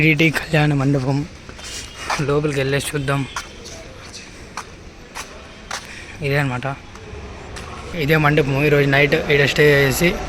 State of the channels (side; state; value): both; identical; correlation 1.00